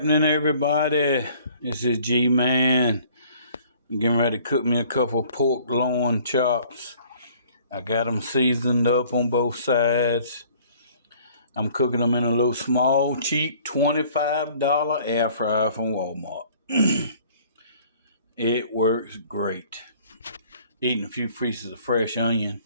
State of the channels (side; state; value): both; inverted; correlation -0.55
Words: everybody? This is G-Man. I'm getting ready to cook me a couple pork loin chops. I got them seasoned up on both sides. I'm cooking them in a little small, cheap $25 air fryer from Walmart. It works great. Eating a few pieces of fresh onion.